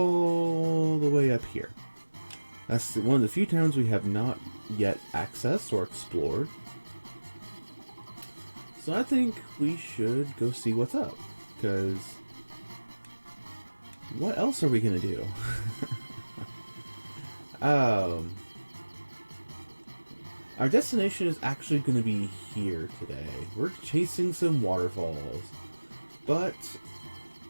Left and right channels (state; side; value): inverted; both; correlation -1.00